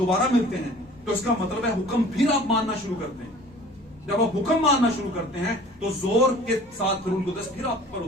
मिलते हैं, तो इसका मतलब है हुक्म फिर आप मानना शुरू करते हैं। जब आप हुक्म मानना शुरू करते हैं तो जोर के साथ रूह कुद्स फिर आप पर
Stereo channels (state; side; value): normal; both; correlation 0.47